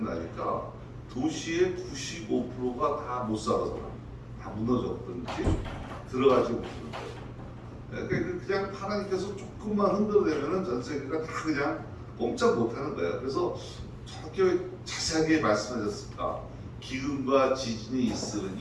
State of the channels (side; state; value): both; identical; correlation 1.00